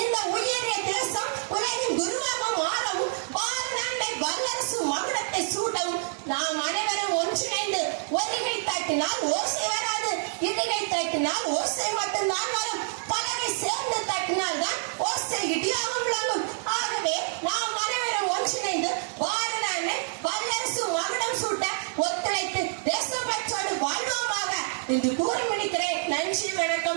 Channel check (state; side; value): silent; left; 60 dB below the other